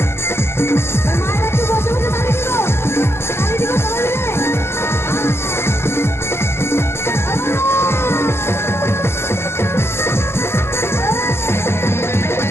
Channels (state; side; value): late; right; 0.12 ms